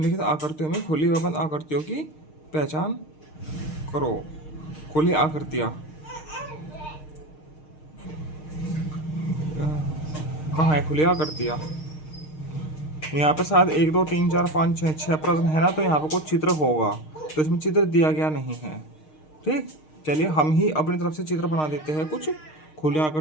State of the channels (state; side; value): late; right; 6.5 ms